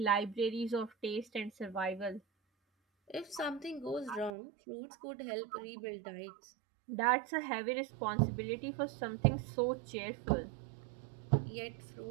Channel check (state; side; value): drops out; left; at 4.3 s